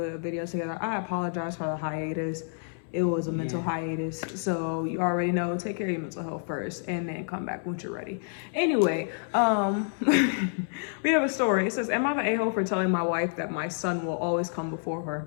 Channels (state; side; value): silent; right; 58 dB below the other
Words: video together. I apologize for the hiatus. It was a mental hiatus, so you already know, take care of your mental health first and then come back once you're ready. Anyway, we have a story. It says, am I the a-hole for telling my wife that my son will always come before her?